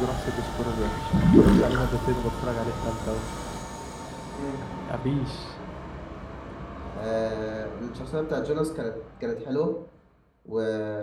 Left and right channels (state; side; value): identical; both; correlation 1.00